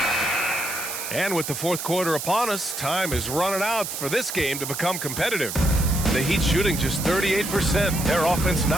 And with the fourth quarter upon us, time is running out for this game to become competitive. The Heat shooting just 38%. Their offense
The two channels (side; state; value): right; noise; hiss, 6 dB below the sound